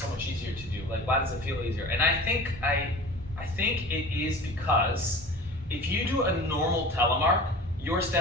much easier to do? Why does it feel easier? And I think it is because if you do a normal telemark, your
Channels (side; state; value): both; normal; correlation 0.38